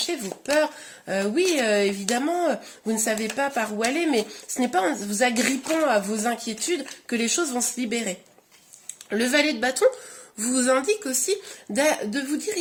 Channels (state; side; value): identical; both; correlation 1.00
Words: vos peurs. Oui, évidemment, vous ne savez pas par où aller, mais ce n'est pas en vous agrippant à vos inquiétudes que les choses vont se libérer. Le valet de bâton vous indique aussi de vous